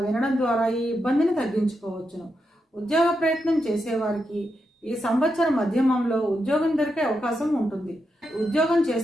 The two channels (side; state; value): both; normal; correlation 0.85